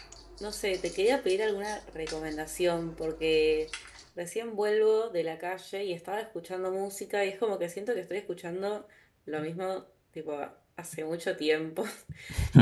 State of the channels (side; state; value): both; identical; correlation 1.00